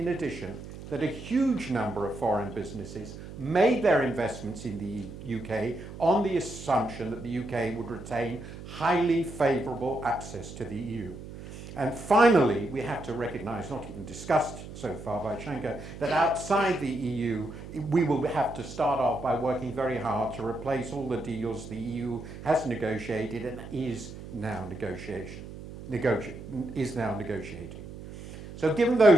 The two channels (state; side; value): noise; right; hum, 13 dB below the sound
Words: addition, that a huge number of foreign businesses made their investments in the UK on the assumption that the UK would retain highly favourable access to the EU. And finally, we have to recognise, not even discussed so far by Shanker, that outside the EU, we will have to start off by working very hard to replace all the deals the EU has negotiated and is now negotiating. So given